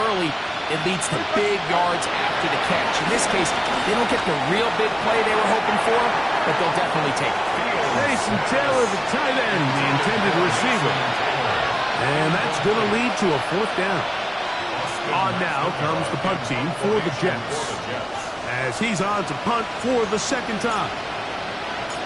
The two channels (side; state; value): both; identical; correlation 1.00